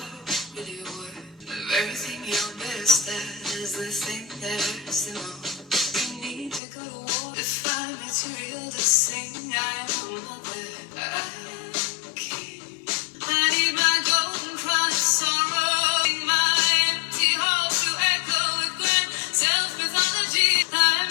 really worth. Of everything you're best at is the thing that hurts the most. We need to go to war to find material to sing. I am a mother, I am king. I need my golden crown of sorrow, my empty hall to echo with grand self-mythology.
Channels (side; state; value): right; drops out; at 6.6 s